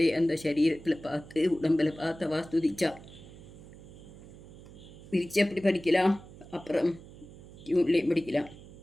அந்த சரீரத்தில் பார்த்து உடம்பில் பார்த்தவா ஸ்துதிச்சா. விரிச்சு எப்படி படிக்கலாம், அப்புறம் டியூன்லேயும் படிக்கலாம்.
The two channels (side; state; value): right; noise; hum, 18 dB below the sound